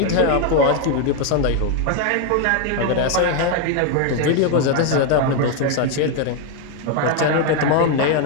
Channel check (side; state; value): both; different; correlation 0.01